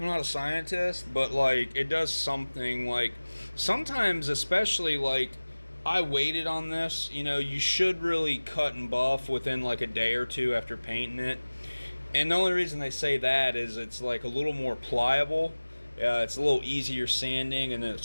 not a scientist, but like, it does something. Like, sometimes, especially like I waited on this. You know, you should really cut and buff within like a day or two after painting it. And the only reason they say that is it's like a little more pliable. It's a little easier sanding, and then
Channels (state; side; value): inverted; both; correlation -1.00